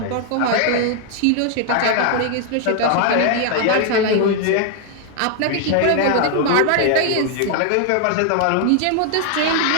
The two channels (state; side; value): different; both; correlation 0.00